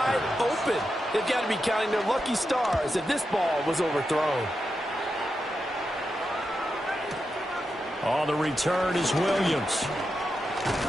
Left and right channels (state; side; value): normal; both; correlation 0.88